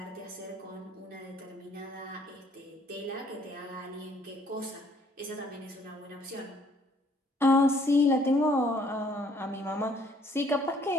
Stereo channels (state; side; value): normal; both; correlation 0.62